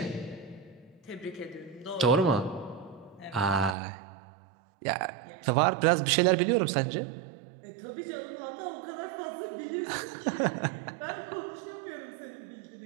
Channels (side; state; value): left; drops out; at 3.8 s